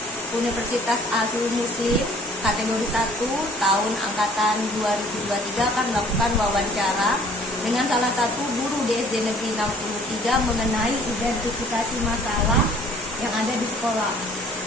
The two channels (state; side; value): normal; both; correlation 0.54